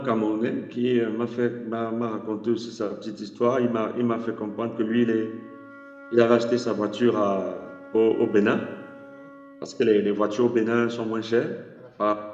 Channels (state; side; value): identical; both; correlation 1.00